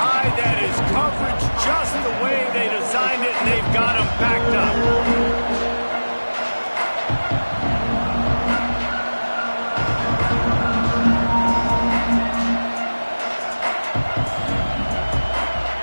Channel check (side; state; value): both; inverted; correlation -1.00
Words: That is coverage just the way they designed it, and they've got him backed up.